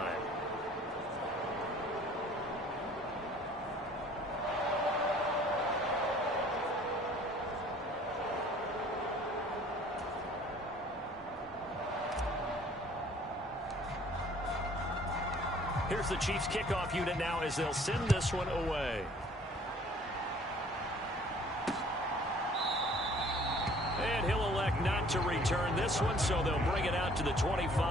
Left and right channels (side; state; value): both; normal; correlation 0.54